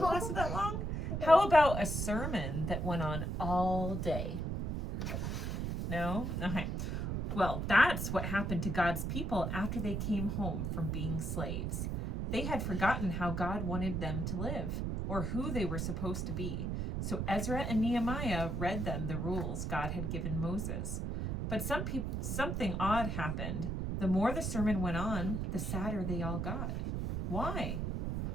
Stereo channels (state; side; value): noise; right; rumble, 1 dB below the sound